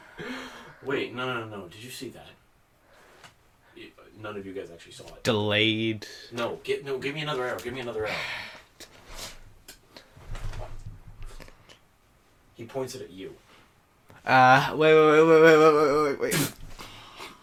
Wait, no. Did you see that? None of you guys actually saw it. Delayed. No, give me another arrow. Give me another arrow. He points it at you. Wait.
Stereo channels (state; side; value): identical; both; correlation 1.00